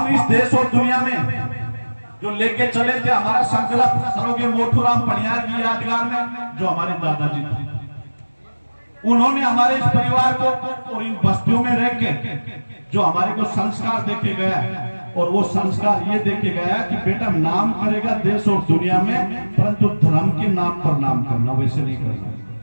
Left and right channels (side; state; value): both; inverted; correlation -1.00